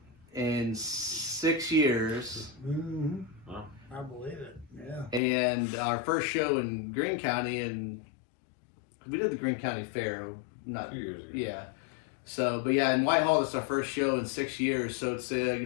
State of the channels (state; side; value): drops out; right; at 5.2 s